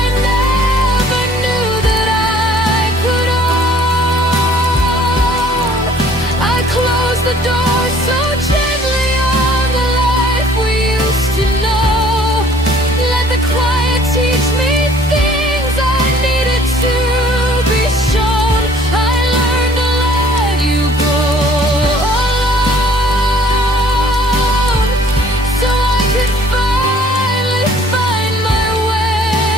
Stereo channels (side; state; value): both; normal; correlation 0.56